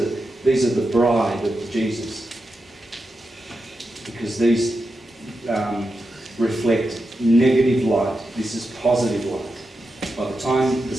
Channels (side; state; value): both; normal; correlation 0.88